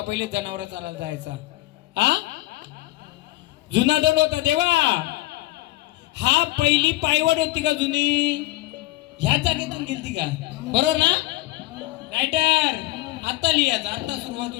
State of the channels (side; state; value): right; quieter; 18.3 dB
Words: पहिले जनावर चालायला जायचा? हा जुना दंड होता देवा. हा पहिली पायवाट होती का जुनी? ह्या जागेतून गेलती का? बरोबर ना रायटर? आता लिहायचं, आता सुरुवात